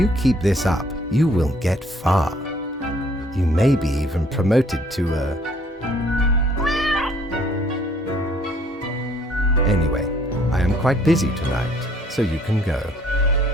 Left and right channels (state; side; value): normal; both; correlation 0.62